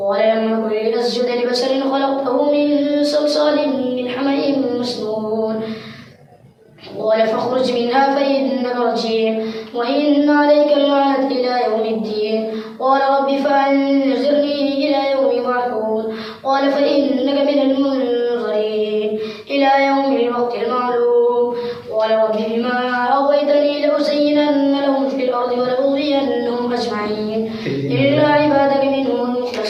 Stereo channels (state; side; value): identical; both; correlation 1.00